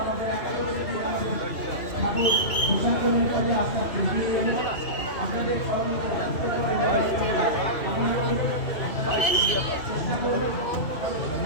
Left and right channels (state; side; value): late; right; 2.6 ms